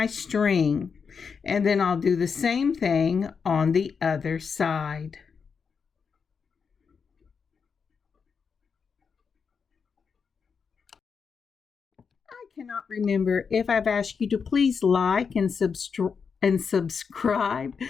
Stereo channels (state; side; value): quieter; right; 5.9 dB